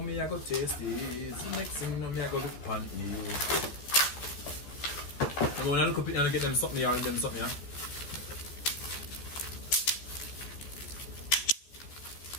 me I go taste is the next thing now me I go look upon is. I'm gonna look up it and get them something here and them something here.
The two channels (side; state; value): right; late; 14 ms